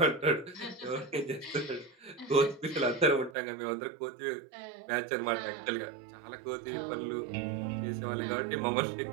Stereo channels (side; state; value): left; drops out; at 3.4 s